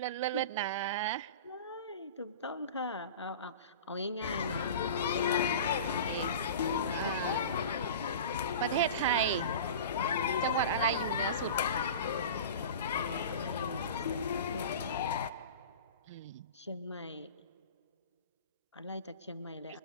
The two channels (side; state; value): both; inverted; correlation -0.34